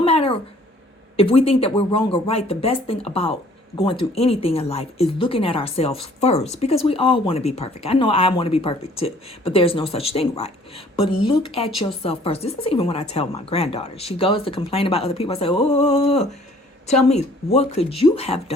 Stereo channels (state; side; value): normal; both; correlation 0.56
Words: matter if we think that we're wrong or right, the best thing about going through anything in life is looking at ourselves first, because we all want to be perfect. I know I want to be perfect too, but there's no such thing, right? But look at yourself first. This is even what I tell my granddaughter. She goes to complain about other people. I say, oh, tell me, what could you have